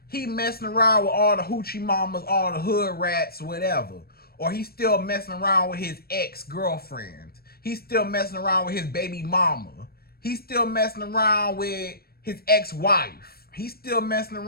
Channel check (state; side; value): late; right; 0.44 ms